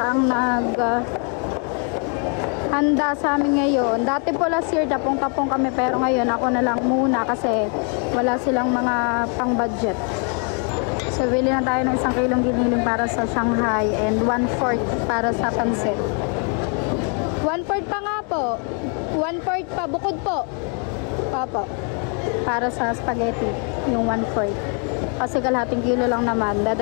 ang handa sa amin ngayon. Dati po last year tapong-tapong kami pero ngayon ako na lang muna kasi wala silang mga pang-budget. So bili na tayo ng 1 kilong giniling para sa Shanghai and 1/4 para sa pansit. 1/4 pa nga po. 1/4 pa. Bukod po. Opo. Para sa spaghetti. Yung 1/4. Kasi kalahating kilo lang naman.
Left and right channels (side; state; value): right; quieter; 39.6 dB